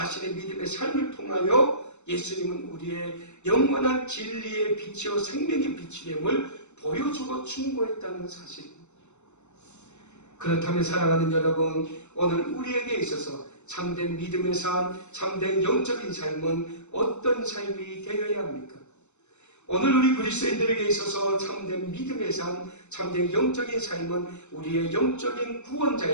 믿음의 삶을 통하여 예수님은 우리의 영원한 진리의 빛이요 생명의 빛이 됨을 보여주고 충고했다는 사실입니다. 그렇다면 사랑하는 여러분, 오늘 우리에게 있어서 참된 믿음의 삶, 참된 영적인 삶은 어떤 삶이 되어야 합니까? 오늘 우리 그리스도인들에게 있어서 참된 믿음의 삶, 참된 영적인 삶은 우리의 영적인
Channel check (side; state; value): right; late; 0.83 ms